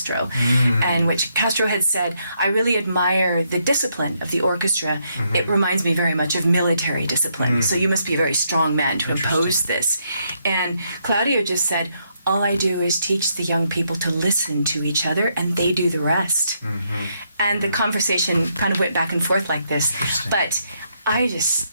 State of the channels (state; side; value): inverted; both; correlation -0.76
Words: and which Castro had said, I really admire the discipline of the orchestra. It reminds me very much of military discipline, so you must be a very strong man to impose this. And Claudio just said, all I do is teach the young people to listen to each other, and they do the rest. And the conversation kind of went back and forth like this. But I